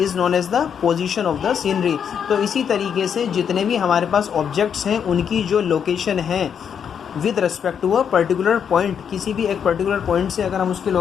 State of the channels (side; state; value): right; quieter; 7.7 dB